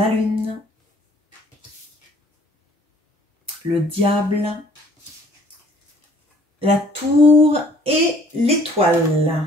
lune, le diable, la tour et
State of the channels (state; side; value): normal; both; correlation 0.57